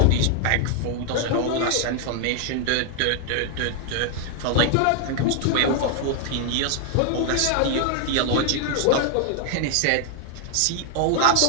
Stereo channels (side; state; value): both; different; correlation 0.00